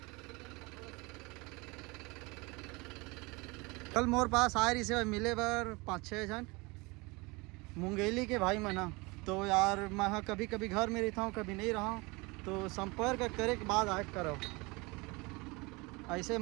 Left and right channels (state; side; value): quieter; left; 25.5 dB